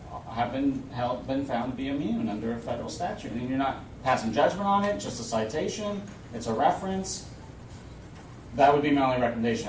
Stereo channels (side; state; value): both; identical; correlation 1.00